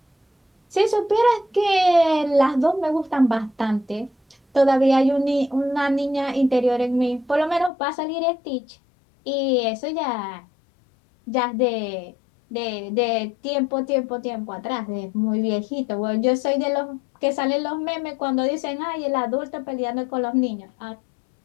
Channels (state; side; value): drops out; right; at 7.7 s